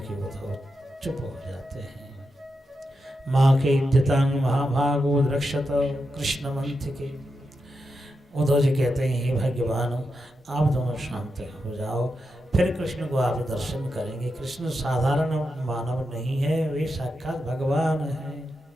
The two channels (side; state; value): both; normal; correlation 0.87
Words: वो तो चुप हो जाते हैं। माँ के इद्यतांग महाभागो रक्षत कृष्ण मंथ के। उद्धव जी कहते हैं, हे भगवान आप दोनों शांत हो जाओ, फिर कृष्ण को आप दर्शन करेंगे। कृष्ण साधारण मानव नहीं है, वे साक्षात भगवान है।